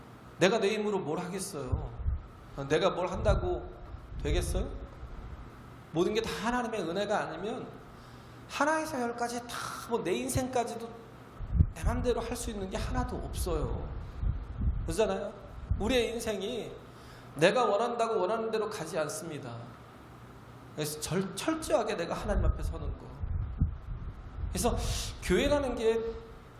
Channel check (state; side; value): identical; both; correlation 1.00